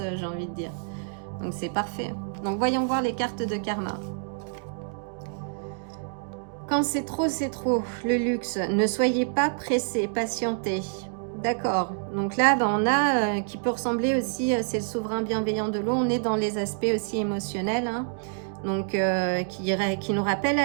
j'ai envie de dire. Donc c'est parfait. Donc voyons voir les cartes de karma. Quand c'est trop, le luxe. Ne soyez pas pressés, patientez. D'accord. Donc là, on a qui peut ressembler aussi, c'est le souverain bienveillant de l'eau. On est dans les aspects aussi émotionnels. Hein. Donc qui nous rappelle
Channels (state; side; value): silent; left; digital silence